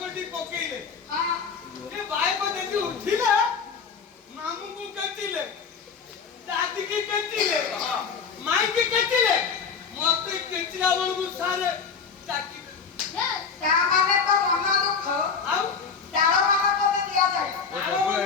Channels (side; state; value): right; quieter; 5.8 dB